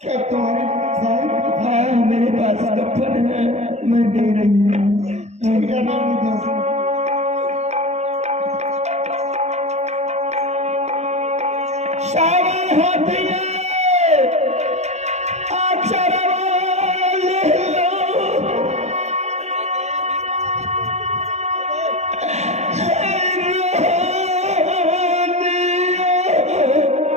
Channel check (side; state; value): left; late; 0.32 ms